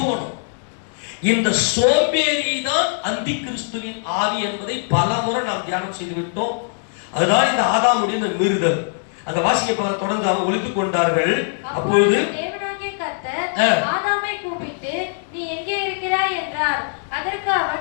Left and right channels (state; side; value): silent; right; 64 dB below the other